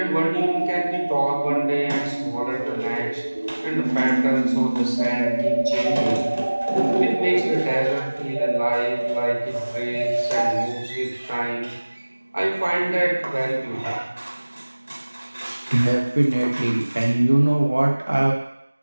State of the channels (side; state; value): both; inverted; correlation -1.00